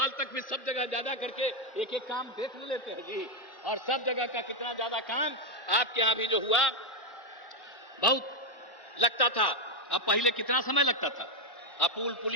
तक भी सब जगह ज्यादा करके एक एक काम देख लेते हैं जी, और सब जगह का कितना ज्यादा काम आपके यहां भी जो हुआ बहुत लगता था। और पहले कितना समय लगता था, अब पुल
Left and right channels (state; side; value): late; right; 1.1 ms